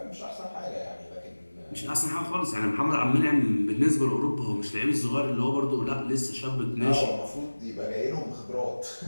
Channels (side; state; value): both; inverted; correlation -1.00